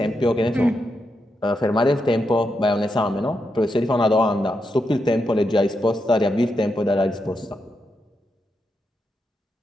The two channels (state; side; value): normal; both; correlation 0.84